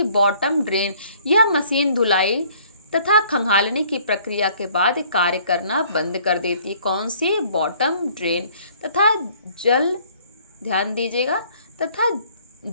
बॉटम ड्रेन। यह मशीन धुलाई तथा खंगालने की प्रक्रिया के बाद कार्य करना बंद कर देती है। कौन सी? Bottom drain. तथा जल, ध्यान दीजिएगा, तथा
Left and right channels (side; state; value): both; inverted; correlation -0.58